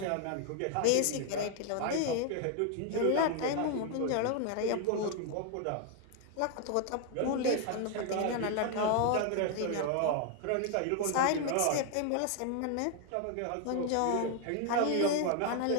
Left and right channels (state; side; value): different; both; correlation 0.00